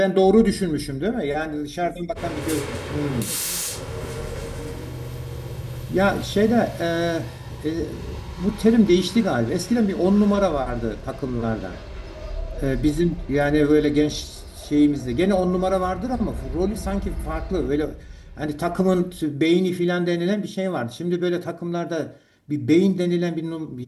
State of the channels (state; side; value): identical; both; correlation 1.00